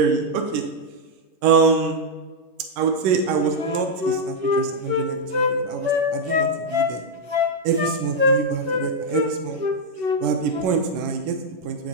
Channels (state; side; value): late; left; 11 ms